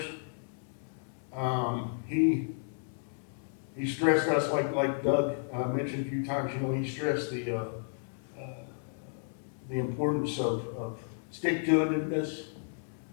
He stressed us, like Doug mentioned a few times, he stressed the importance of stick-to-itiveness.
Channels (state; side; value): silent; right; digital silence